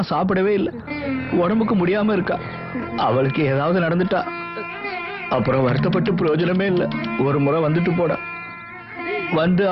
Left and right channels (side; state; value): both; identical; correlation 1.00